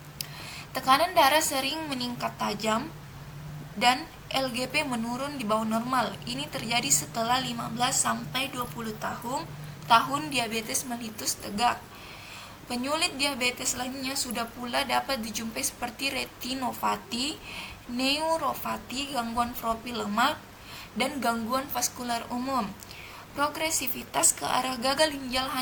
Tekanan darah sering meningkat tajam dan LGP menurun di bawah normal. Ini terjadi setelah 15-20 tahun diabetes mellitus tegak. Penyulit diabetes lainnya sudah pula dapat dijumpai seperti retinopati, neuropati, gangguan profil lemak, dan gangguan vaskular umum. Progresivitas ke arah gagal ginjal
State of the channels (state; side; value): identical; both; correlation 1.00